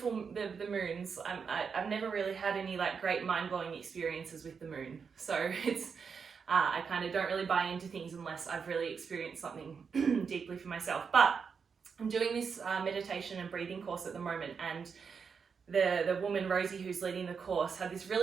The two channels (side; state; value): left; quieter; 6.0 dB